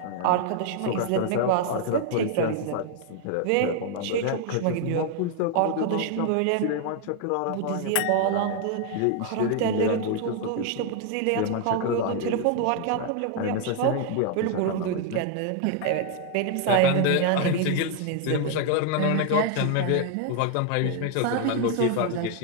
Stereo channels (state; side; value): different; both; correlation 0.00